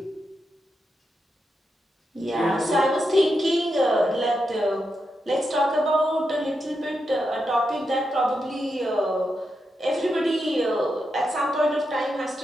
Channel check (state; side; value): normal; both; correlation 0.86